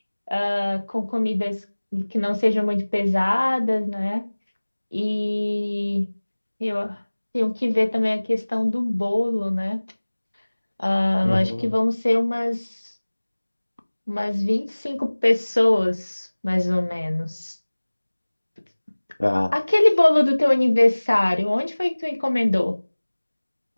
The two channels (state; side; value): inverted; both; correlation -1.00